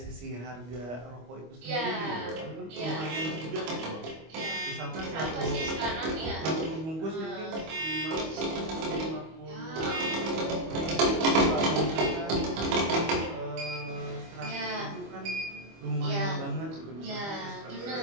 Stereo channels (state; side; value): late; left; 25 ms